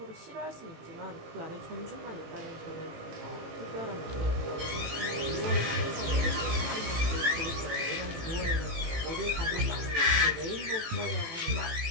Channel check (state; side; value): late; left; 18 ms